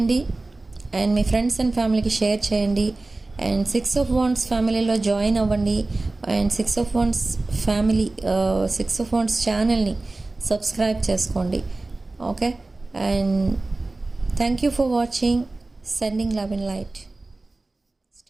అండ్ మీ ఫ్రెండ్స్ అండ్ ఫ్యామిలీకి షేర్ చేయండి. అండ్ 6 of Wands ఫ్యామిలీలో జాయిన్ అవ్వండి. And 6 of Wands family 6 of Wands ఛానల్ని సబ్స్క్రైబ్ చేసుకోండి. Okay, and thank you for watching. Sending love and light.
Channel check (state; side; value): quieter; left; 3.1 dB